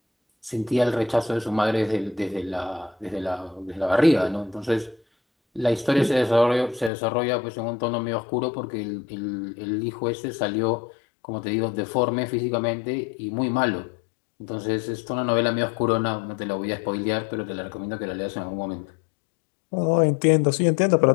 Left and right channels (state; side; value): drops out; right; at 6.9 s